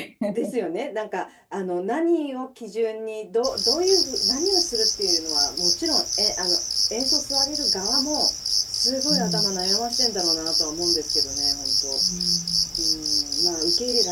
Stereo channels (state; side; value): identical; both; correlation 1.00